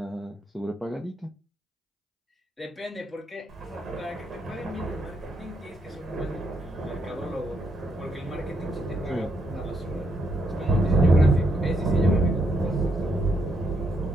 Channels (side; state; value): both; normal; correlation 0.77